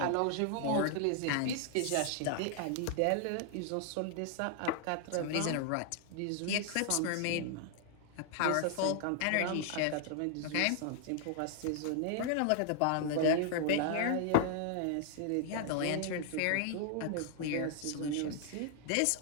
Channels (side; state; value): both; different; correlation 0.00